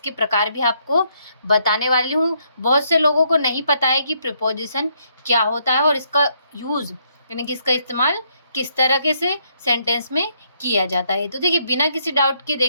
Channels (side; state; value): both; inverted; correlation -0.72